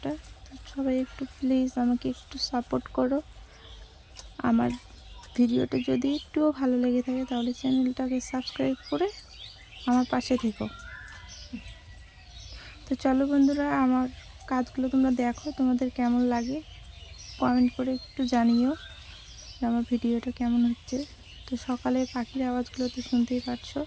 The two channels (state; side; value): identical; both; correlation 1.00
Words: তো সবাই একটু প্লিজ আমাকে একটু সাপোর্ট করো। আমার ভিডিওটা যদি একটুও ভালো লেগে থাকে তাহলে চ্যানেলটাকে সাবস্ক্রাইব করে আমার পাশে থেকো। তো চলো বন্ধুরা, আমার কাজগুলো তোমরা দেখো, তোমাদের কেমন লাগে কমেন্ট করে একটু জানিও যে আমার ভিডিওটা কেমন হচ্ছে। তো সকালে পাখির আওয়াজগুলো তো শুনতেই পারছো।